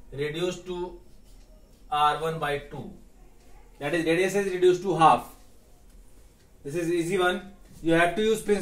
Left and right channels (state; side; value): identical; both; correlation 1.00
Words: reduced to R1 by 2, that is radius is reduced to half. This is easy one. You have to use